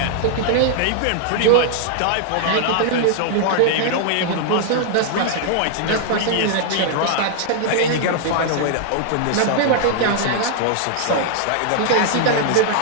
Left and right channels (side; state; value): both; different; correlation 0.00